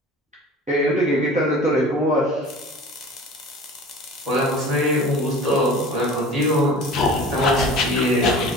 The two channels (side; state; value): both; normal; correlation 0.41